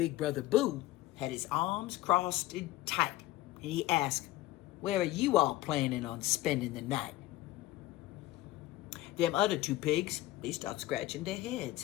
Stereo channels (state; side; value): quieter; right; 16.3 dB